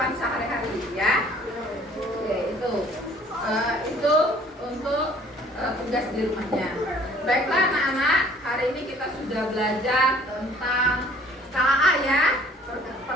kehidupan sehari-hari ya. Oke, itu untuk tugas di rumahnya. Baiklah anak-anak, hari ini kita sudah belajar tentang KAA ya,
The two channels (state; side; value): normal; both; correlation 0.55